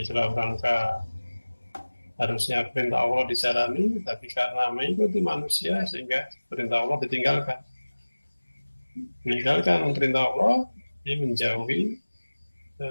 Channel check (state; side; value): inverted; both; correlation -1.00